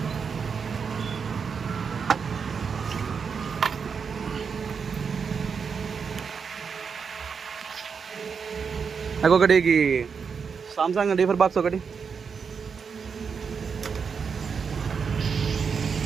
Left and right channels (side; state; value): left; quieter; 6.0 dB